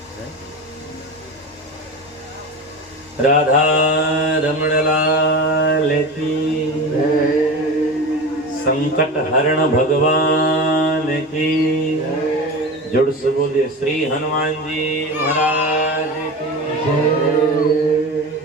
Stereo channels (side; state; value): both; normal; correlation 0.28